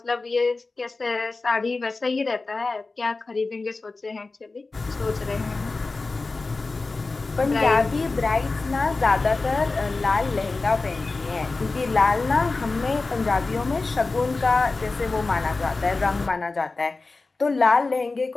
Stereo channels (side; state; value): right; quieter; 3.6 dB